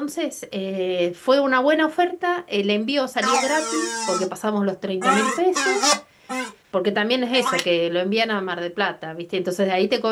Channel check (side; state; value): both; identical; correlation 1.00